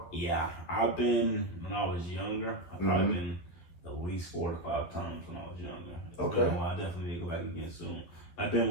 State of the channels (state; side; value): late; right; 11 ms